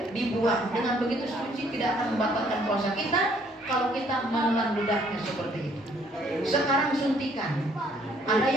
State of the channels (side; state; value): both; normal; correlation 0.63